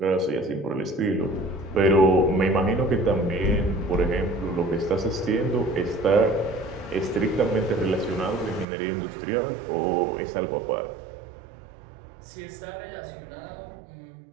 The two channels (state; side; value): drops out; left; at 8.7 s